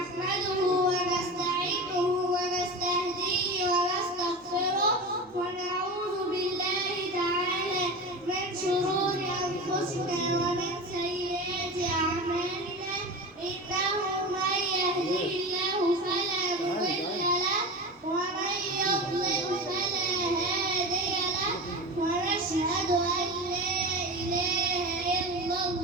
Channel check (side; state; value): left; noise; hum, 28 dB below the sound